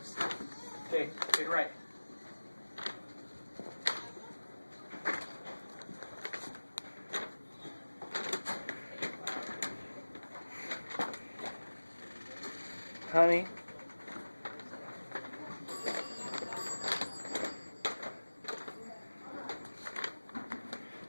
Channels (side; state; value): both; inverted; correlation -1.00